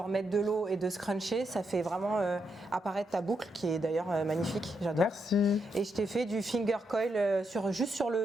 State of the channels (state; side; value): normal; both; correlation 0.81